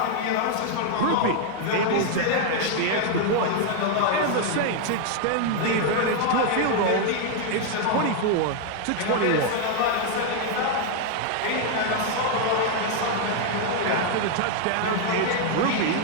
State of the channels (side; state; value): both; different; correlation 0.00